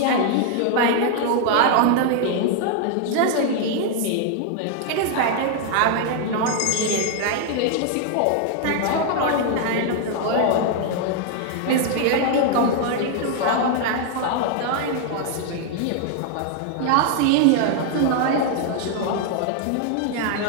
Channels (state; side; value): different; both; correlation 0.00